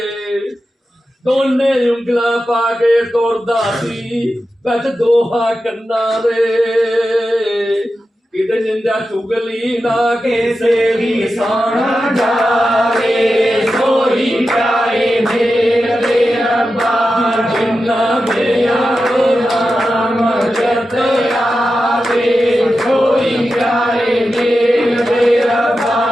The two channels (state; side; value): normal; both; correlation 0.91